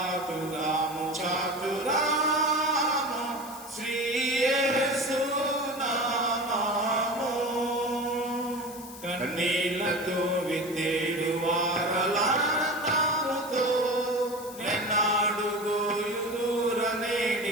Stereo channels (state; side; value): noise; left; hiss, 16 dB below the sound